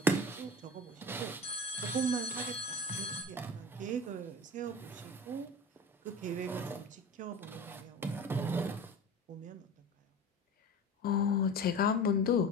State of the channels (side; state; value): both; normal; correlation 0.34